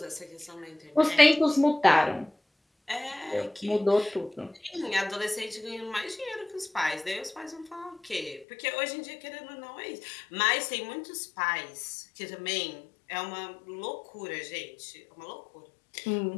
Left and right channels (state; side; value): drops out; right; at 8.5 s